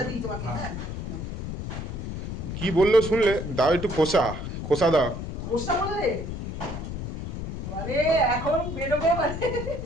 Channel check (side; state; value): left; noise; rumble, 6 dB below the sound